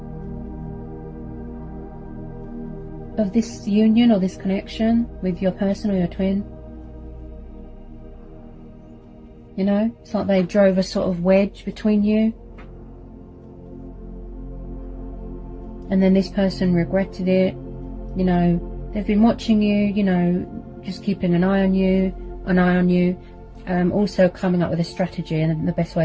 of this union or this connection with your person or your twin. You know, it's like they drove a sort of wedge between you. And then this person regretted it. You know, they've been watching you, you know, just keeping an eye on you, also coming up with a strategy and the best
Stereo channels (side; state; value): both; identical; correlation 1.00